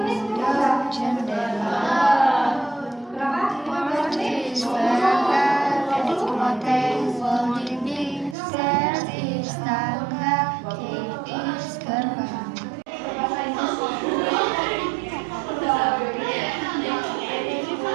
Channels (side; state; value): left; drops out; at 8.3 s